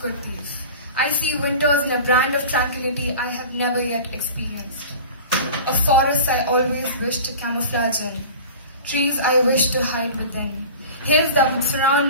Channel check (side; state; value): both; inverted; correlation -0.37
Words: I see winters in a brand of tranquility I have never yet experienced. Of forests I always wish to camouflage in, trees I wish to hide within, hills that would